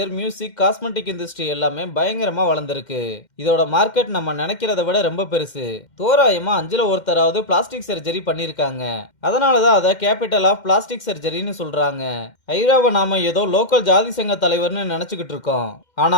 music, cosmetic industry எல்லாமே பயங்கரமா வளர்ந்துருக்கு. இதோட மார்க்கெட் நம்ம நினைக்கிறத விட ரொம்ப பெருசு. தோராயமா 5ல ஒருத்தராவது பிளாஸ்டிக் சர்ஜரி பண்ணிருக்காங்க. அதனாலதான் அதை கேபிட்டல் ஆஃப் பிளாஸ்டிக் சர்ஜரின்னு சொல்றாங்க. ஐராவை நாம ஏதோ லோக்கல் ஜாதி சங்க தலைவர்னு நினைச்சுக்கிட்டு இருக்கோம்.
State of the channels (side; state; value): right; late; 2.1 ms